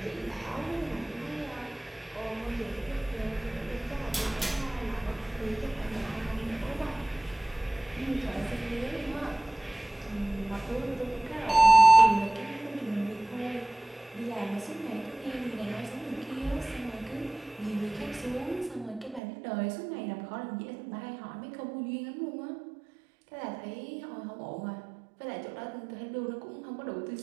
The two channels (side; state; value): left; drops out; at 19.2 s